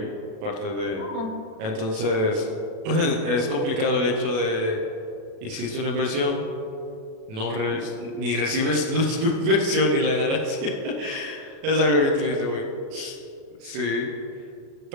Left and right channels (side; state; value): left; late; 37 ms